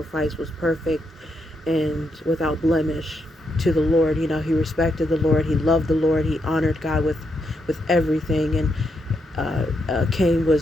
was perfect and without blemish to the Lord. He respected the Lord, he loved the Lord, he honored God with everything. And Cain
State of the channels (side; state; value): both; normal; correlation 0.80